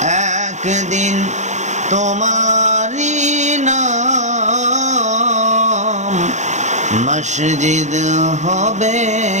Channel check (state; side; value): late; left; 0.34 ms